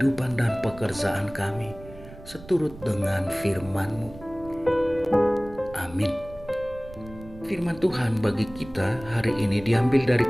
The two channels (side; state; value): right; noise; rumble, 18 dB below the sound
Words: dan pekerjaan kami seturut dengan firman-Mu. Amin. Firman Tuhan bagi kita hari ini diambil dari